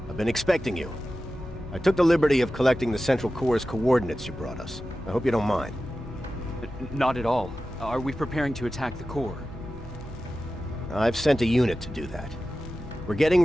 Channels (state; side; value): normal; both; correlation 0.94